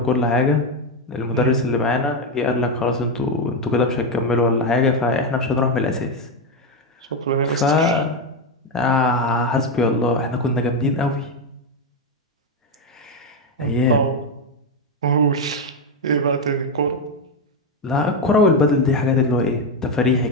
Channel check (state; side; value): normal; both; correlation 0.08